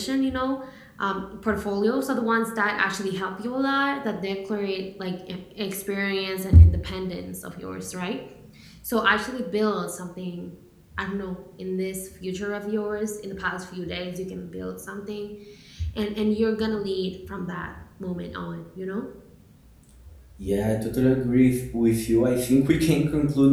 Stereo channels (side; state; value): both; identical; correlation 1.00